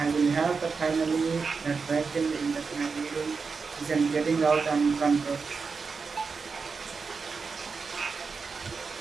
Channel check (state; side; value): quieter; left; 5.0 dB